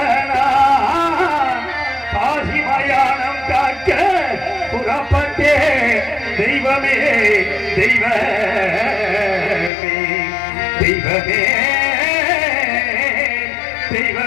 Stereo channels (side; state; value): right; drops out; at 9.7 s